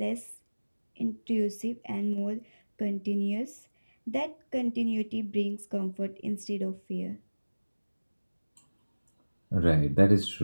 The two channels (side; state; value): both; inverted; correlation -1.00